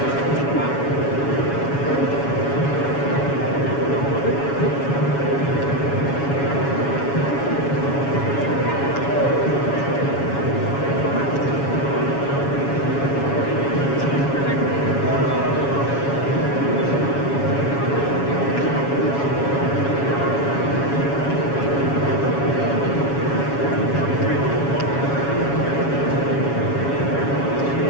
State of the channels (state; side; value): late; right; 7.2 ms